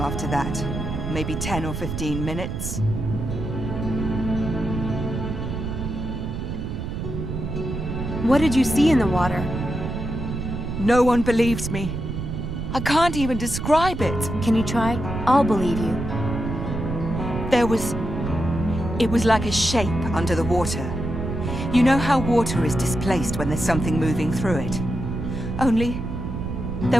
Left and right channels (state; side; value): noise; right; rumble, 4 dB below the sound